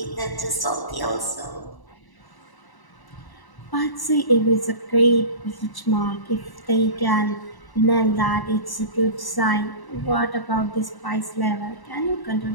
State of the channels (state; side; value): late; right; 1.0 ms